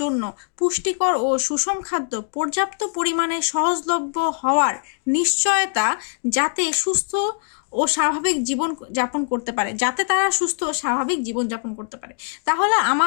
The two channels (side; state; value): right; silent; 64 dB below the other